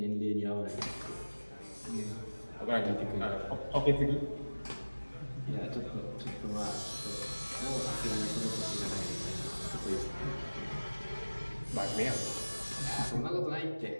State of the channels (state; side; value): inverted; both; correlation -1.00